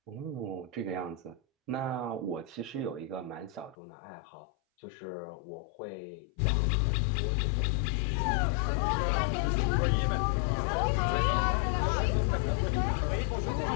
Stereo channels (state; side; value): drops out; right; at 3.8 s